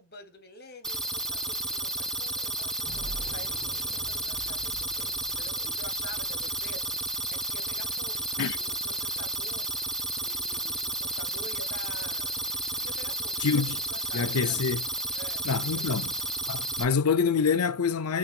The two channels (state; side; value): normal; both; correlation 0.07